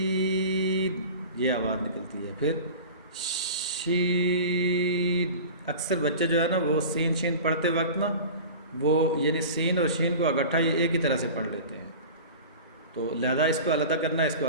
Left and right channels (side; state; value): both; inverted; correlation -0.36